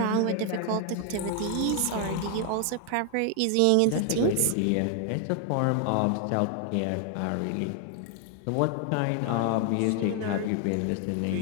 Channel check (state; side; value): different; both; correlation 0.00